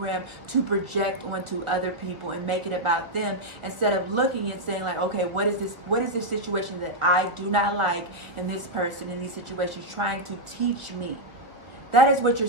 to project onto other people and make it about them, instead of looking and saying like, okay, what is this situation that I do not like in this person, in these situations, trying to teach me? That is what you're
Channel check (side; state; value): left; late; 1.4 ms